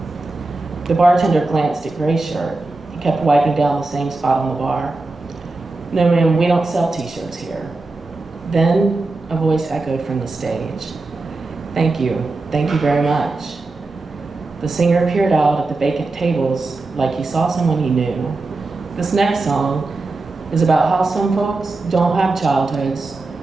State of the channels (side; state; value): left; quieter; 3.3 dB